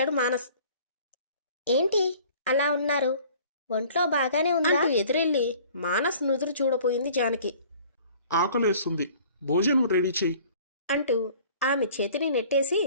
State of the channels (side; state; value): both; inverted; correlation -0.51